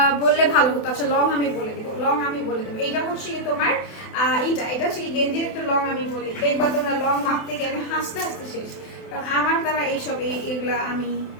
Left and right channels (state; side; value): late; right; 28 ms